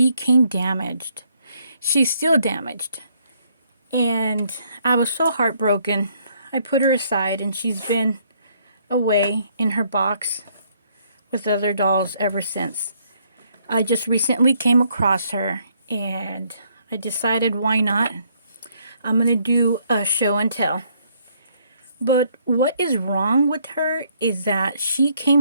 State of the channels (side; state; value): both; inverted; correlation -0.68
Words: came damaged. She's still damaged. And I was so heartbroken. I put her aside and she's been away in her box with other dolls ever since. I just recently came across her and I decided why not? I'm going to do a show and tell. But what is wrong with her is that she